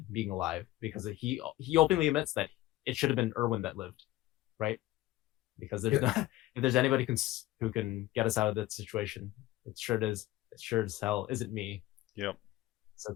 being alive because he openly admits that it should have been Erwin that lived, right? Because there's no, if there's anybody who can get us out of that situation, it sure as hell isn't me. Yep.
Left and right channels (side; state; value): right; quieter; 16.3 dB